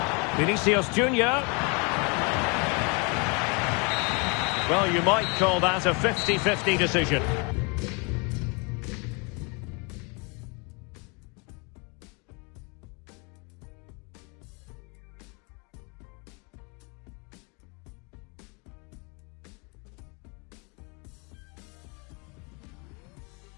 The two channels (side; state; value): right; quieter; 31.8 dB